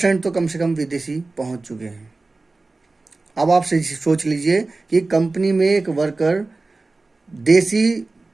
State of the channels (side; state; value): left; quieter; 3.4 dB